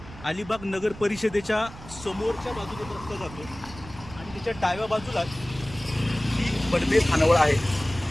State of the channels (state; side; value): noise; right; rumble, 16 dB below the sound